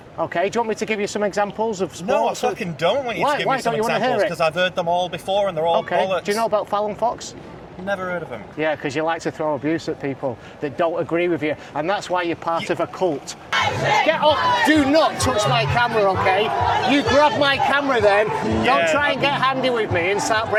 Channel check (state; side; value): identical; both; correlation 1.00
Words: Okay, do you want me to give you some examples of sports? No, I fucking don't want you to give me some examples, because I've heard them all before and they're all bollocks. Do you know about Fallon Fox? Never heard of them. Yeah, because you like to throw abuse at people that don't agree with you, and that's why you're part of a cult. Get off! Do not touch my camera, okay? You grab my camera then. Don't try and get handy with me and start